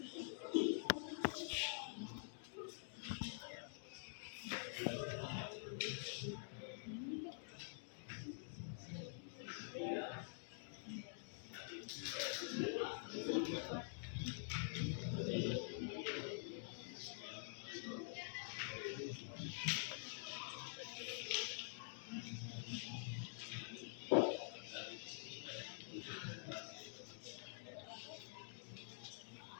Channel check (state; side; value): silent; right; digital silence